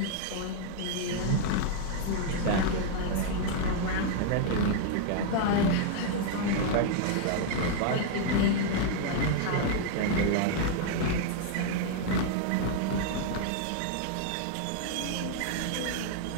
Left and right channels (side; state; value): both; different; correlation 0.00